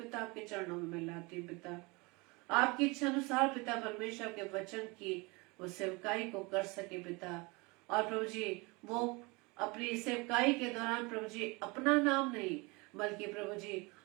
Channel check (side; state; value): left; quieter; 26.6 dB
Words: आपके चरणों में मैं लाती हूँ पिता। आपकी इच्छा अनुसार पिता परमेश्वर के वचन की वो सेवकाई को कर सके पिता, और प्रभु जी वो अपनी सेवकाई के दौरान प्रभु जी अपना नाम नहीं बल्कि प्रभु जी